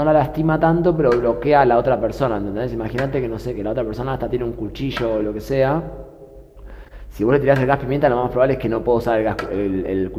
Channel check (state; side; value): identical; both; correlation 1.00